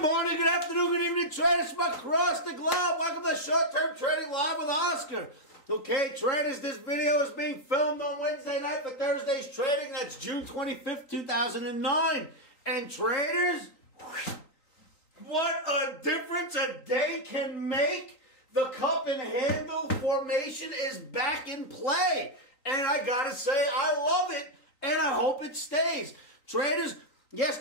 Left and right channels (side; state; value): right; late; 3.9 ms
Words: morning, good afternoon, good evening, traders from across the globe. Welcome to Short-Term Trading Live with Oscar. Okay, traders, this video is being filmed on Wednesday night for Thursday's trading. That's June 25th, 2009. And traders, what a difference a day can make. The cup and handle formation is back in play. And I gotta say, I love it, and I hope it stays. Traders,